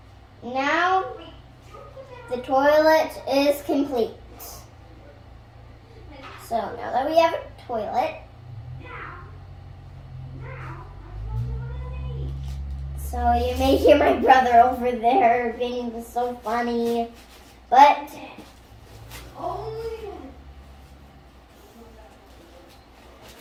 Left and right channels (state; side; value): identical; both; correlation 1.00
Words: Now the toilet is complete. So now that we have a toilet, so you may hear my brother over there being so funny, but